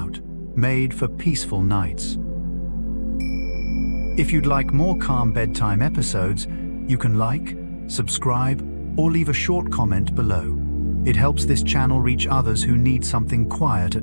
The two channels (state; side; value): inverted; both; correlation -1.00